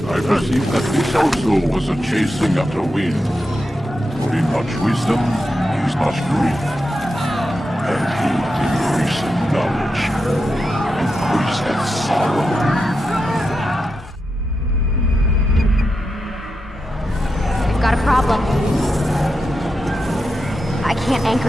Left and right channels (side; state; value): both; normal; correlation 0.88